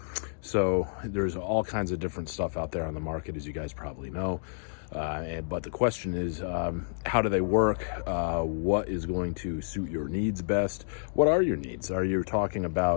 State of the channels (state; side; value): silent; right; digital silence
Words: So there's all kinds of different stuff out there on the market, as you guys probably know. But the question is, how do they work? What is going to suit your needs best? What are your needs? Are you talking